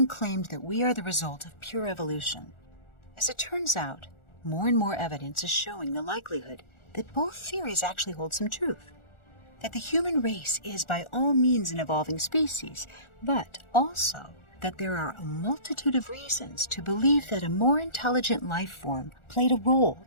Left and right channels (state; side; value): late; right; 1.4 ms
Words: claimed that we are the result of pure evolution. As it turns out, more and more evidence is showing the likelihood that both theories actually hold some truth. That the human race is by all means an evolving species, but also that there are a multitude of reasons to believe that a more intelligent life form played a role